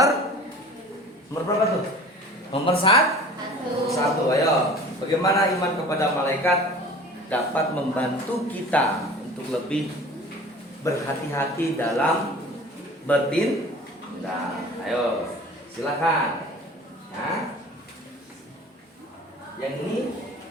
berapa tuh? Nomor 1. Ayo, bagaimana iman kepada malaikat dapat membantu kita untuk lebih berhati-hati dalam bertindak. Ayo, silakan. Ya. Yang ini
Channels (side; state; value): both; normal; correlation 0.43